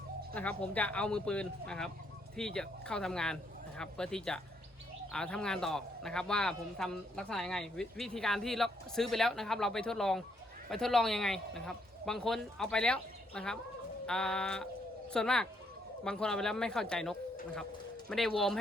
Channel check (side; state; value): both; normal; correlation 0.73